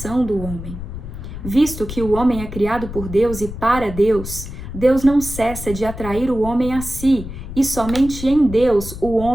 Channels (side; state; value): left; noise; rumble, 10 dB below the sound